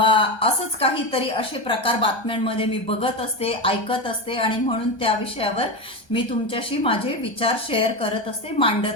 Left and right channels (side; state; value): right; late; 1.2 ms